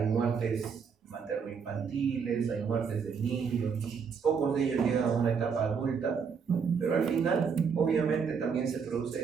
muertes materno-infantiles, hay muertes de niños, pocos de ellos llegan a una etapa adulta, pero al final obviamente también se produce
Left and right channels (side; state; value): left; quieter; 6.2 dB